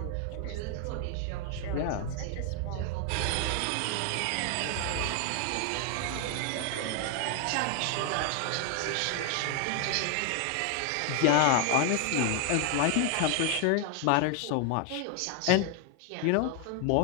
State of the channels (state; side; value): different; both; correlation 0.00